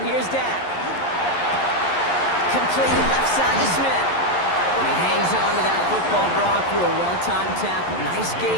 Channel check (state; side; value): late; right; 11 ms